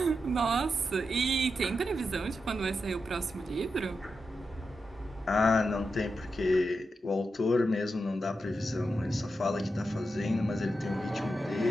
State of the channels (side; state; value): both; normal; correlation 0.87